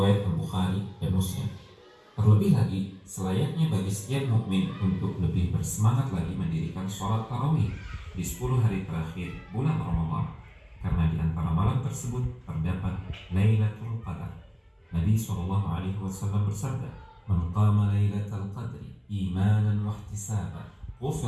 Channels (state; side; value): identical; both; correlation 1.00